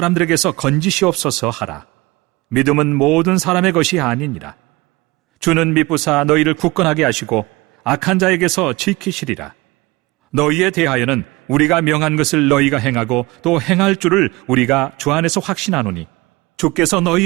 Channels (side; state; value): left; quieter; 22.4 dB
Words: 건지시옵소서 하라. 믿음은 모든 사람의 것이 아니니라. 주는 미쁘사 너희를 굳건하게 하시고 악한 자에게서 지키시리라. 너희에 대하여는 우리가 명한 것을 너희가 행하고 또 행할 줄을 우리가 주 안에서 확신하노니 주께서